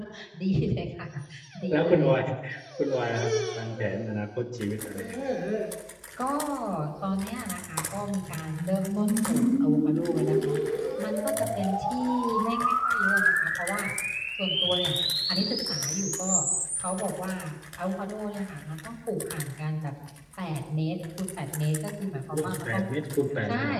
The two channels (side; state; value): both; identical; correlation 1.00